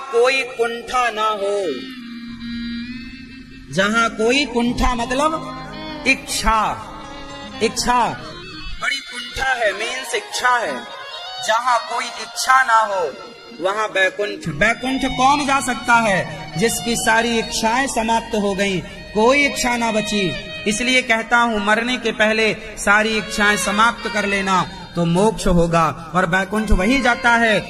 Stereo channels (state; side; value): identical; both; correlation 1.00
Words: कोई कुंठा ना हो, जहां कोई कुंठा मतलब इच्छा, इच्छा बड़ी कुंठा है, मीन्स इच्छा है। जहां कोई इच्छा ना हो वहां बैकुंठ। बैकुंठ कौन जा सकता है? जिसकी सारी इच्छाएं समाप्त हो गईं, कोई इच्छा ना बची। इसलिए कहता हूं मरने के पहले सारी इच्छाएं समाप्त कर लेना तो मोक्ष होगा। और बैकुंठ वही जाता